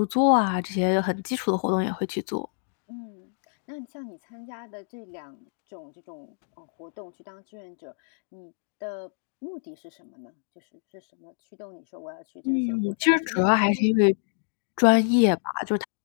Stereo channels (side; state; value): right; silent; digital silence